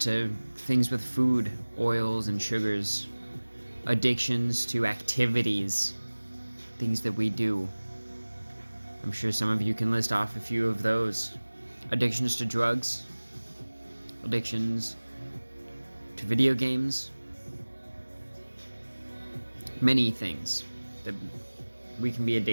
things with food, oils and sugars. Addictions to activities, things that we do. I'm sure some of you can list off a few of those. Addictions to drugs, addictions to video games, many things that we can be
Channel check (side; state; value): both; inverted; correlation -1.00